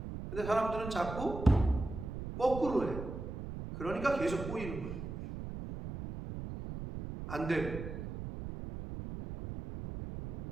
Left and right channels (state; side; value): noise; right; rumble, 7 dB below the sound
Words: 근데 사람들은 자꾸 거꾸로 해요. 그러니까 계속 꼬이는 거예요. 안 되고.